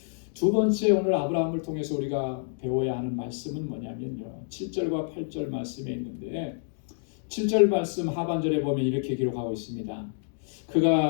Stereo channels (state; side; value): silent; right; digital silence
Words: 두 번째 오늘 아브라함을 통해서 우리가 배워야 하는 말씀은 뭐냐면요. 7절과 8절 말씀에 있는데 7절 말씀 하반절에 보면 이렇게 기록하고 있습니다.